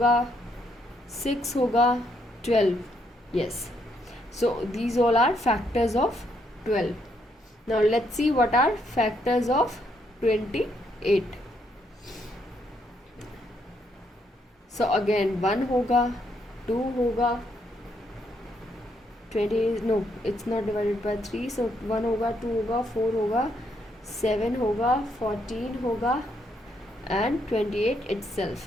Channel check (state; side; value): normal; both; correlation 0.74